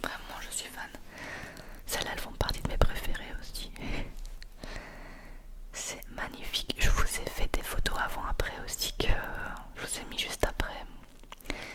vraiment je suis fan. Celles-là, elles font partie de mes préférées aussi. C'est magnifique. Je vous ai fait des photos avant-après aussi que je vous ai mis juste après.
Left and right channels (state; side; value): identical; both; correlation 1.00